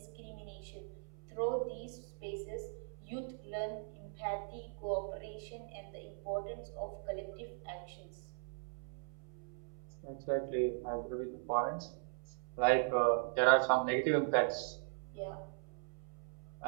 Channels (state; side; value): silent; left; 51 dB below the other